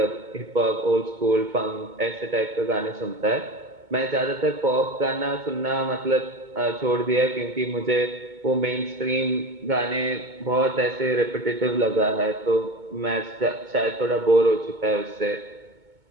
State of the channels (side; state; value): left; late; 2.2 ms